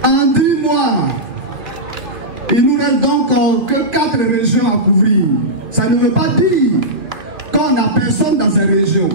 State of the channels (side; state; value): left; late; 2.5 ms